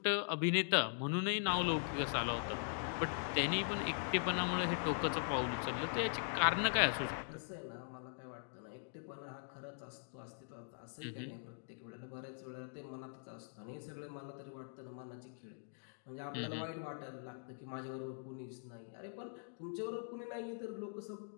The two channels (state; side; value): silent; right; digital silence